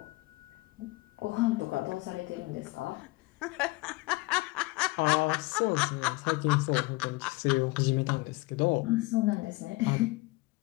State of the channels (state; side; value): quieter; right; 22.6 dB